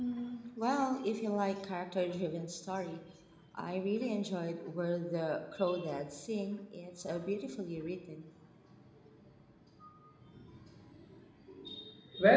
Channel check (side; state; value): both; identical; correlation 1.00